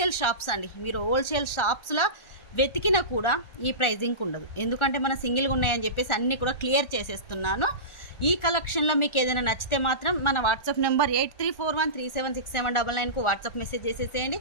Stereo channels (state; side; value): late; right; 1.4 ms